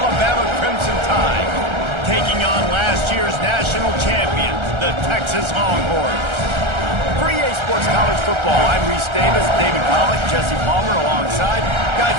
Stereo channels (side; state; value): left; late; 1.3 ms